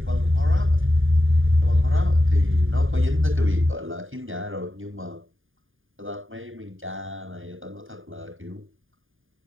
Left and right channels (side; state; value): left; late; 0.59 ms